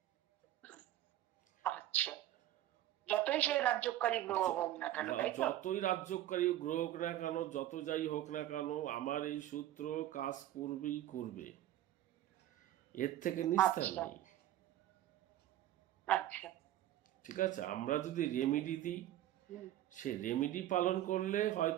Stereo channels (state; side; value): quieter; left; 13.2 dB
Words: আচ্ছা, যতই সেই রাজ্যকারী গ্রহ হোক না কেন, তাই তো? যতই রাজ্যকারী গ্রহ হোক না কেন, যত যাই হোক না কেন, আমার এই সূত্র কাজ করবেই করবে, এর থেকে নিস্তার আচ্ছা। নেই। আচ্ছা। ঠিক আছে, আমরা যদি রেমেডি দিই, সে রেমেডি পালন করলে